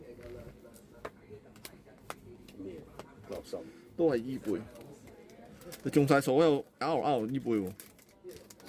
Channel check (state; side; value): identical; both; correlation 1.00